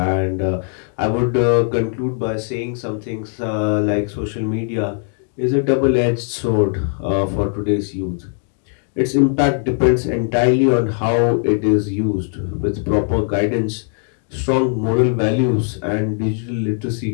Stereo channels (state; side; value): silent; right; 60 dB below the other